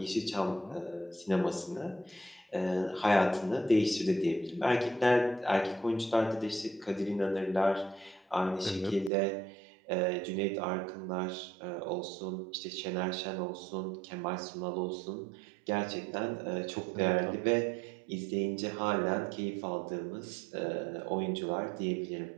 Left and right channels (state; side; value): drops out; left; at 9.1 s